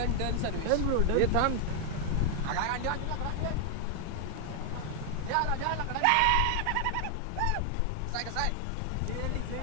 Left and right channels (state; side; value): different; both; correlation 0.00